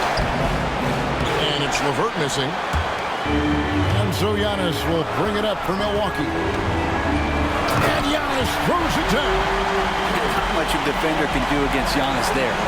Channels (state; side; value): identical; both; correlation 1.00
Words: And it's LeVert missing. And so Giannis will bring it up for Milwaukee. And Giannis throws it down. Not much a defender can do against Giannis there.